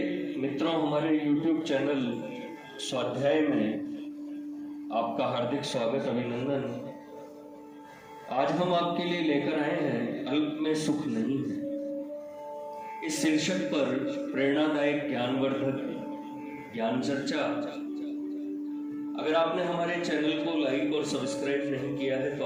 मित्रों, हमारे YouTube चैनल स्वाध्याय में आपका हार्दिक स्वागत, अभिनंदन। आज हम आपके लिए लेकर आए हैं अल्प में सुख नहीं है। इस शीर्षक पर प्रेरणादायक ज्ञानवर्धक ज्ञान चर्चा। अगर आपने हमारे चैनल को लाइक और सब्सक्राइब नहीं किया है तो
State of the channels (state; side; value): identical; both; correlation 1.00